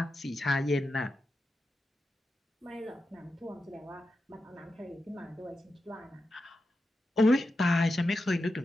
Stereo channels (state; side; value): normal; both; correlation 0.90